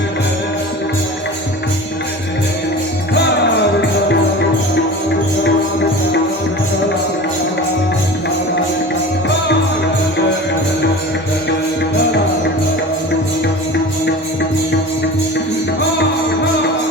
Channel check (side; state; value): both; normal; correlation 0.35